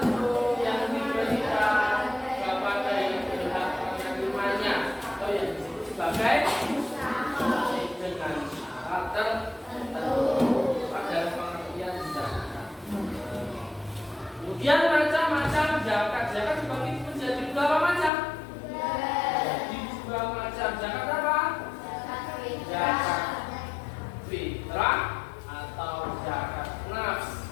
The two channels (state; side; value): drops out; right; at 18.1 s